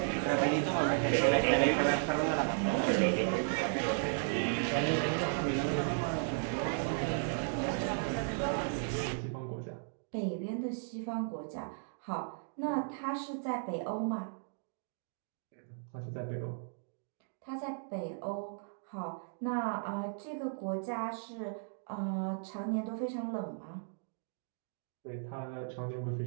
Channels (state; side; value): silent; left; digital silence